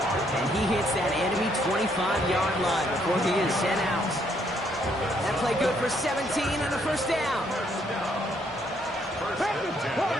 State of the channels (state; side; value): normal; both; correlation 0.70